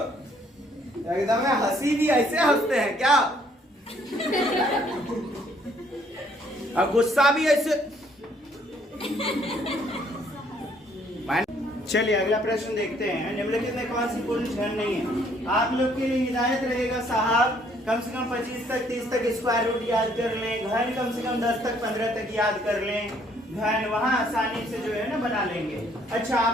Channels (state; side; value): normal; both; correlation 0.64